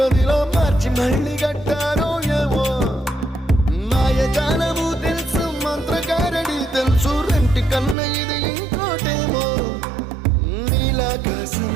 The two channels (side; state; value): left; drops out; at 8.0 s